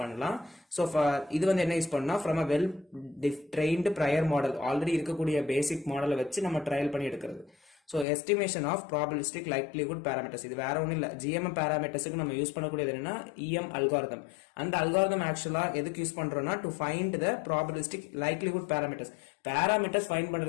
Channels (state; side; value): drops out; right; at 8.1 s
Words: பண்ணலாம். ஸோ இது வந்து என்ன யூஸ் பண்ணா, from a well trained prior model, already இருக்கக்கூடிய பேசிக் மாடலை வச்சு நம்ம ட்ரையல் பண்ணி எடுக்கிறது. So estimation of probabilistic likelihood parameters, இது வேற ஒன்றும் இல்லை, ஜிஎம்எம் பேராமீட்டர்ஸுக்கு நம்ம யூஸ் பண்ணக்கூடியது என்னன்னா இஎம் அல்காரிதம். அந்த அல்காரிதம் ஆக்சுவலா எதுக்கு யூஸ் பண்றோம்னா to find the probabilistic likelihood parameters find